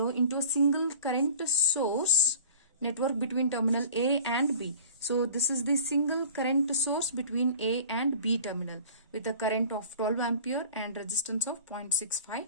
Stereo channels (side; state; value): both; inverted; correlation -0.43